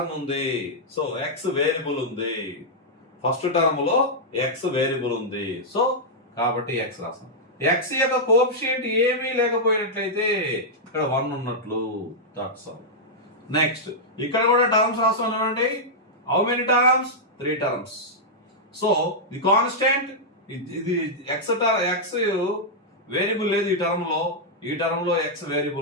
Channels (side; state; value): both; normal; correlation -0.07